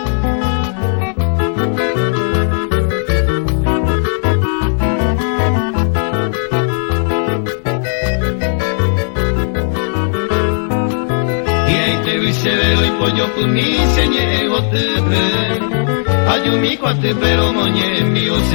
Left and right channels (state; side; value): silent; right; digital silence